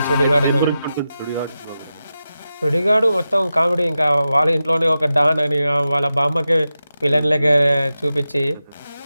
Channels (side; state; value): both; inverted; correlation -0.92